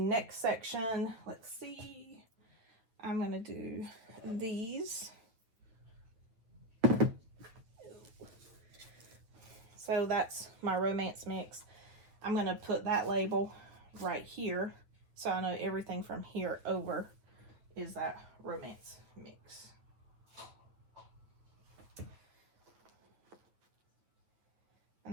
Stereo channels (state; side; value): late; left; 9.0 ms